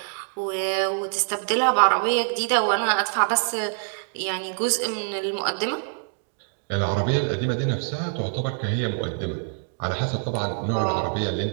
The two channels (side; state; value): left; silent; 62 dB below the other